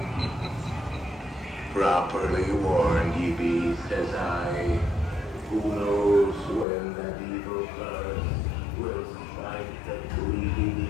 Properly warned ye be, says I. Who knows when that evil curse will smite the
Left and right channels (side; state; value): right; drops out; at 6.7 s